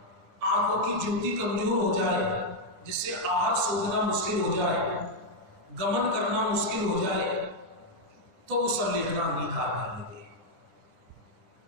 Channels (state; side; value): late; left; 9.9 ms